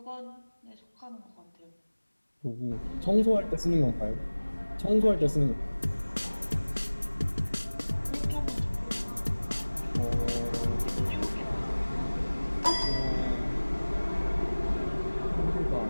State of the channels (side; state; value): both; inverted; correlation -1.00